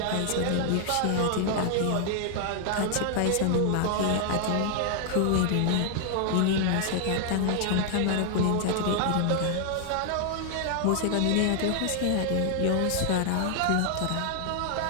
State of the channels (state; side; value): different; both; correlation 0.00